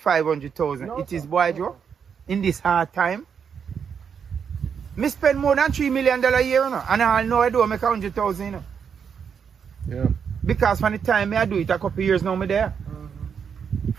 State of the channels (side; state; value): left; quieter; 7.0 dB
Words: No, It is sir. boy Joe, in this hard time. Me spend more than $3 million a year, you know, and I know I do make 100,000, you know. Yeah. Because from the time me I do it, a couple of years now me there.